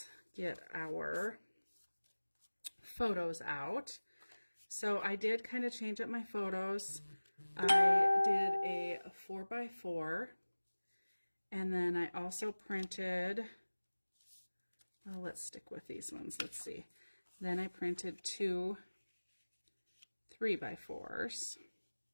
get our photos out. So I did kind of change up my photos. I did a 4x4, and then I also printed, well, let's stick with these ones. Let's see. Then I printed 2 3x4s.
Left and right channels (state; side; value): inverted; both; correlation -1.00